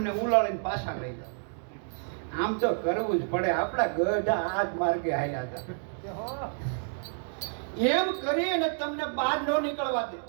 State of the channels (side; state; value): left; silent; digital silence